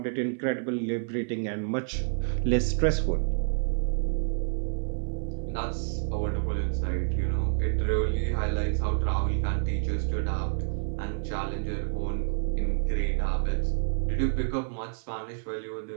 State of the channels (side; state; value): left; silent; 59 dB below the other